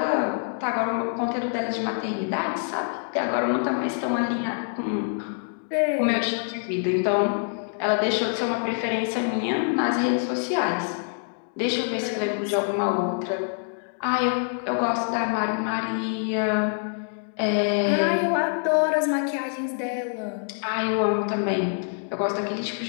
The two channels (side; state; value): right; silent; 61 dB below the other